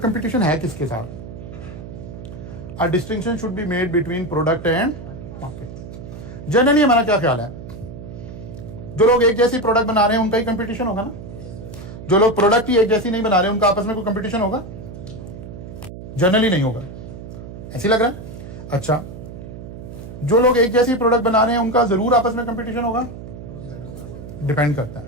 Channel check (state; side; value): noise; right; hum, 12 dB below the sound